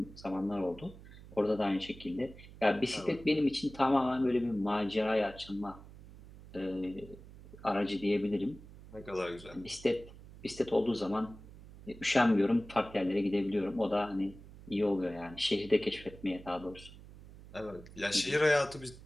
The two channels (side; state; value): right; noise; hum, 18 dB below the sound